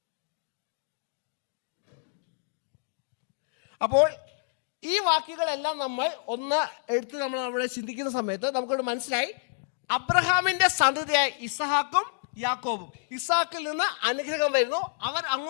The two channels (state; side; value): silent; right; digital silence